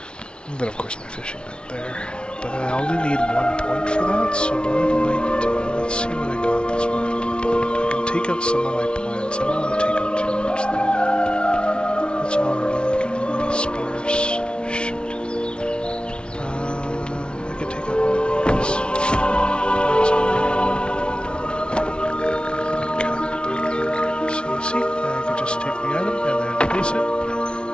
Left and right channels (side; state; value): right; late; 0.057 ms